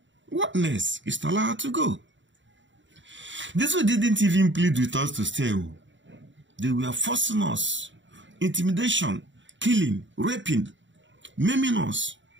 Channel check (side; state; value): left; late; 0.54 ms